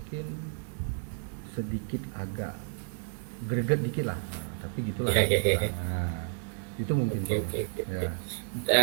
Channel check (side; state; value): left; silent; digital silence